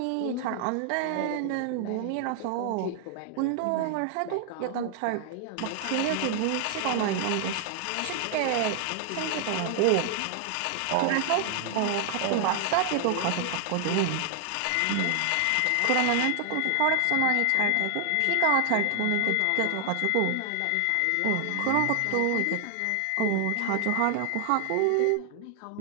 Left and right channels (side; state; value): both; different; correlation 0.00